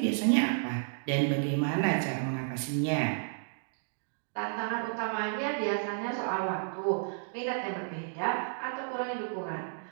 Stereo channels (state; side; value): silent; left; digital silence